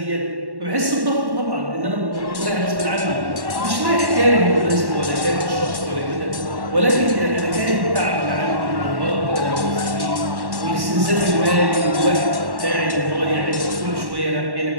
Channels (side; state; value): left; late; 1.1 ms